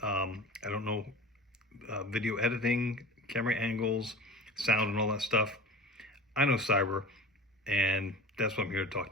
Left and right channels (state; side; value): normal; both; correlation 0.37